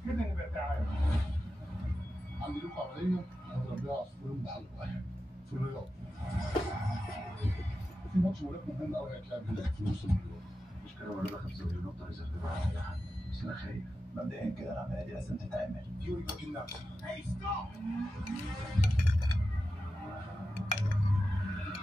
كده نبقى تعالى. عندي لكم عمليه هضرب بيها عصفورين بحلق واحد في الرياض. في ماتش ملاك مهم قوي هيتلعب هناك في نص المليون. مش كده ولا 5 مليون نقطه ريزرف على اي حد، بس انا خايف. مبدئيا كده العمليه دي لازم تتعمل. فيوري باكين نفسه. هاي ستوب!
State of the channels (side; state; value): both; normal; correlation 0.91